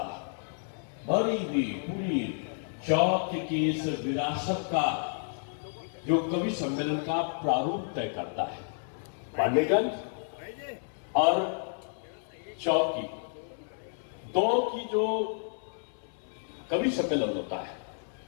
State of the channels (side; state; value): right; silent; 57 dB below the other